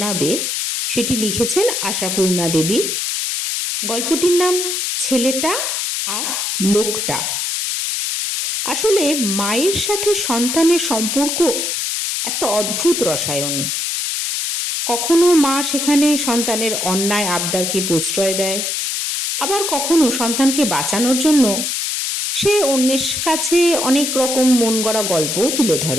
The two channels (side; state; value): left; noise; hiss, 1 dB below the sound